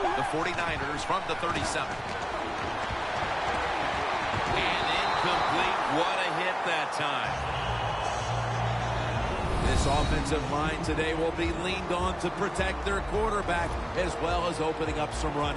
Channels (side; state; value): both; identical; correlation 1.00